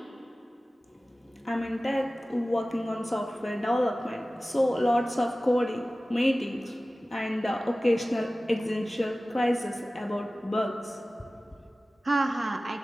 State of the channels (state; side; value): normal; both; correlation 0.97